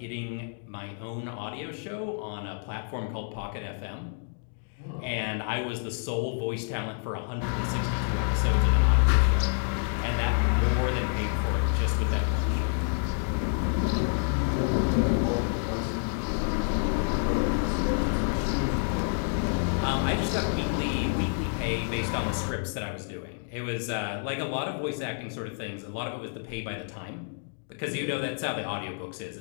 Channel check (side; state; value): right; silent; 58 dB below the other